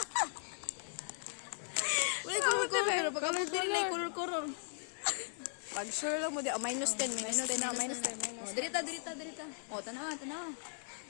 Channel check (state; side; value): silent; right; digital silence